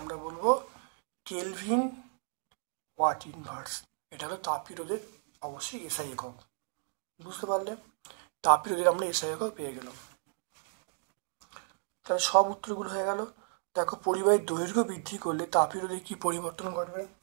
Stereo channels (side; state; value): left; silent; 56 dB below the other